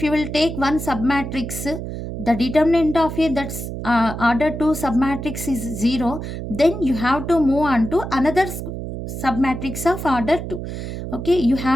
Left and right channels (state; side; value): noise; right; hum, 7 dB below the sound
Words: you will take one submatrix, the determinant of a that's order 2 submatrix is 0, then you have to move on to another submatrix of order 2. Okay, you